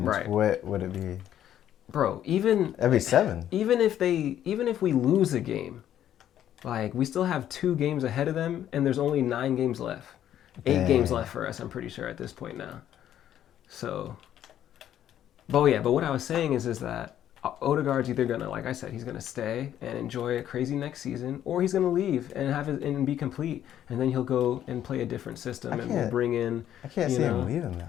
Right. What would it be? Bro, it'd be 7. Even if we lose a game, like we still have 2 games ahead of them, and there's only 9 games left. 8 games left for us, I'm pretty sure, at this point now. So, but what I was saying is that Odegaard's either gonna, like I said, he's gonna stay and enjoy a crazy next season, or he's gonna leave and be complete, and then he'll go and play a different system, and we'll bring in. I can't see him leaving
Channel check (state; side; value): quieter; right; 11.0 dB